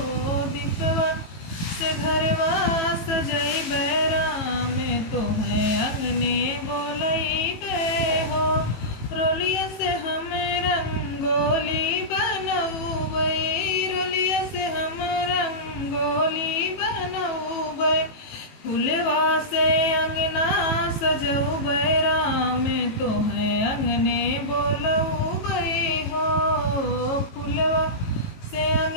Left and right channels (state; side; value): late; right; 18 ms